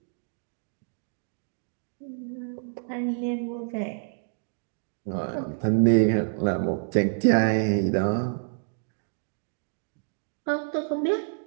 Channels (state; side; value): silent; left; digital silence